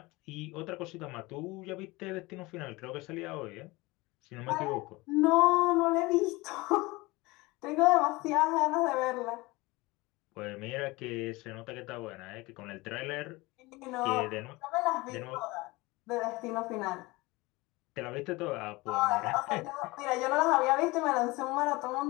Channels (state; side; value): quieter; right; 22.3 dB